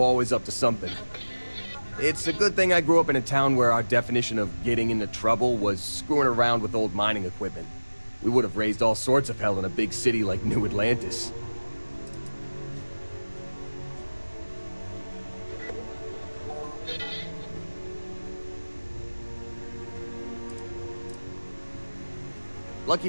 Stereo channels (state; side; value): inverted; both; correlation -1.00